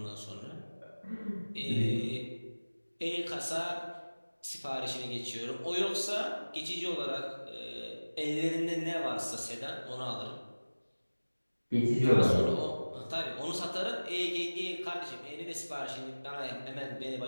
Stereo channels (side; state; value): both; inverted; correlation -1.00